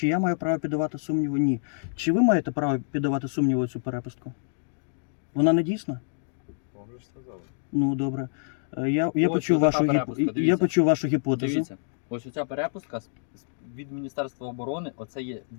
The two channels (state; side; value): silent; right; digital silence